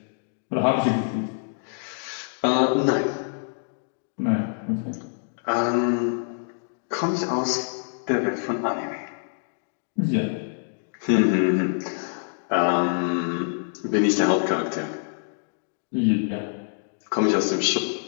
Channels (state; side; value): silent; right; digital silence